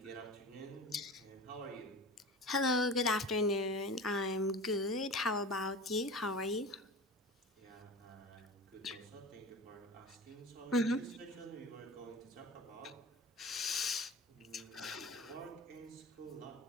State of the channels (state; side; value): normal; both; correlation 0.34